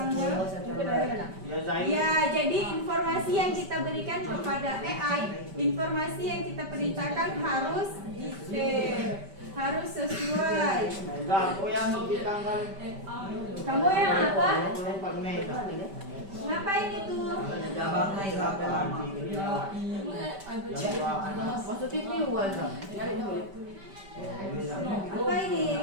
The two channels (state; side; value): late; left; 5.1 ms